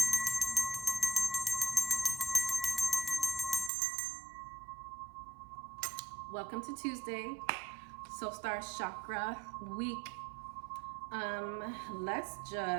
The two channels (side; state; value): left; drops out; at 3.7 s